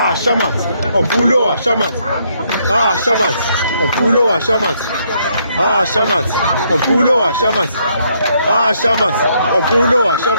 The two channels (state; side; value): inverted; both; correlation -0.72